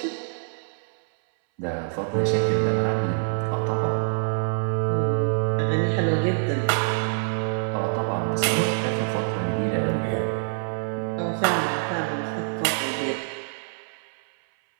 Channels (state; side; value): silent; left; 61 dB below the other